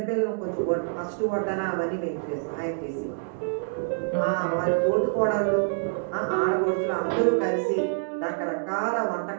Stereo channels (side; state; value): left; silent; digital silence